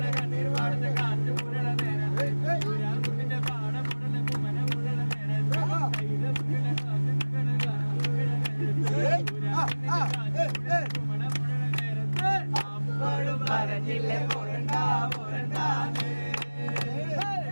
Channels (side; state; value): both; inverted; correlation -1.00